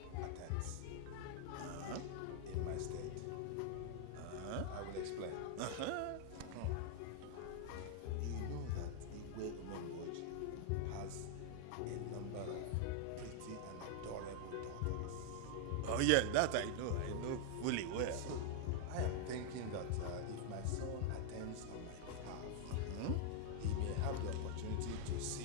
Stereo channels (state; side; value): different; both; correlation 0.00